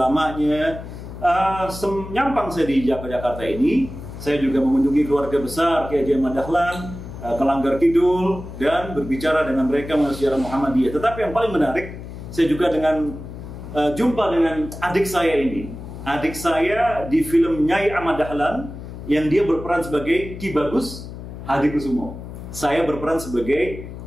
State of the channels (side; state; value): left; noise; hum, 11 dB below the sound